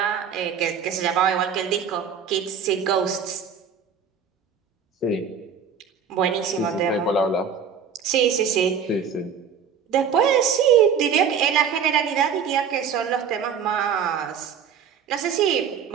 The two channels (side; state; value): left; quieter; 7.0 dB